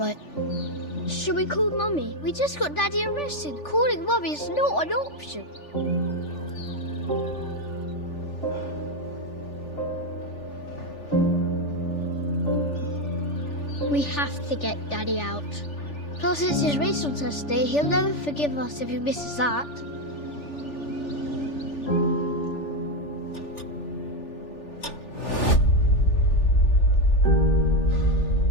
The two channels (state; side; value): late; right; 3.4 ms